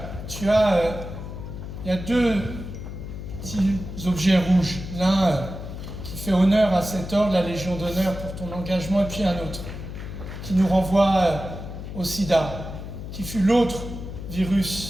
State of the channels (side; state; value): left; noise; hum, 9 dB below the sound